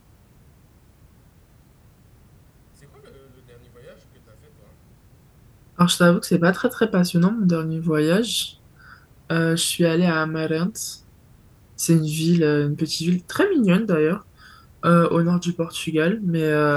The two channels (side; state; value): both; identical; correlation 1.00